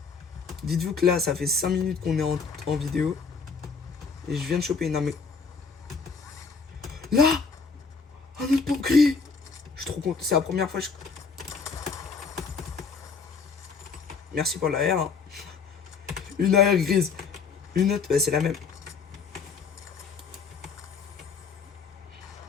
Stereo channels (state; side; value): quieter; right; 5.2 dB